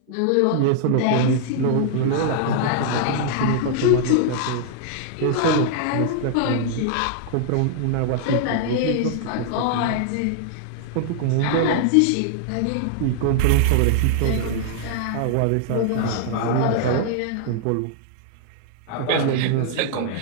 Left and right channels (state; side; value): different; both; correlation -0.01